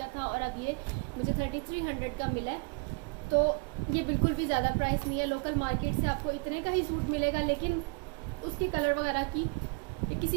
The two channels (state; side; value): quieter; left; 30.3 dB